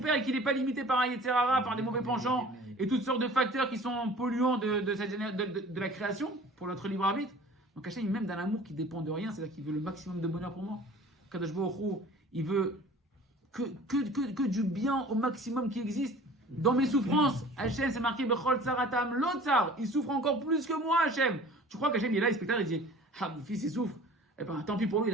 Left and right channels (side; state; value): both; normal; correlation 0.45